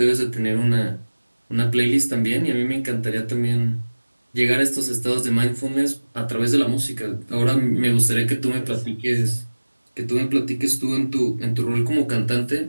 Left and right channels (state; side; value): inverted; both; correlation -1.00